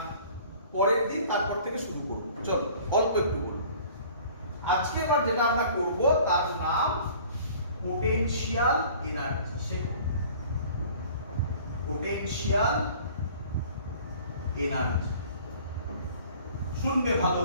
পরের দিন তারপর থেকে শুরু করব। চলো অল্প একটু করব আজকে। এবার যেটা আমরা করব তার নাম পোটেনশিয়াল এনার্জি। পোটেনশিয়াল এনার্জি শুনবে ভালো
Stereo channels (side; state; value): both; inverted; correlation -0.49